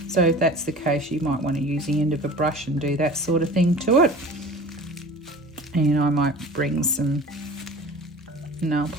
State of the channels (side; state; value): both; normal; correlation 0.40